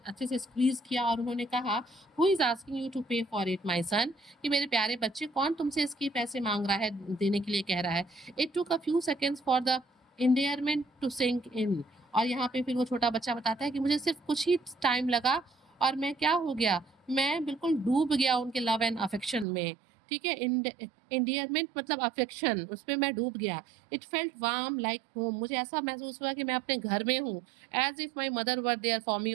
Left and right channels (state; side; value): drops out; left; at 19.5 s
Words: से स्क्वीज किया, और उन्होंने कहा, who is asking you to pay for it my son, कि मेरे प्यारे बच्चे कौन तुमसे इसके पैसे मांग रहा है, देने के लिए कह रहा है। It took a few seconds for the endearment to sink in। और यहाँ पे फिर वो छोटा बच्चा बताता है कि मुझे सिर्फ कुछ ही टाइम लगा और मैं क्या हो गया, मैं बिल्कुल डूब गया उनके लव एंड अफेक्शन में। ठीक है, इंडियरमेंट मतलब अफेक्शन, उसमें मैं डूब गया। It felt warm like home, मुझे ऐसा महसूस हुआ कि मैं अपने घर में हूँ। As if my mother were there for me,